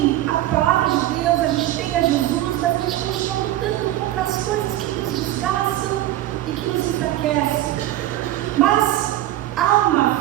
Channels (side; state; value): left; quieter; 14.4 dB